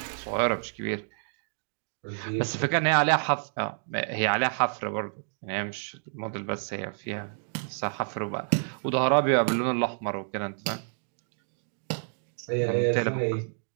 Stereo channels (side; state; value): left; silent; 59 dB below the other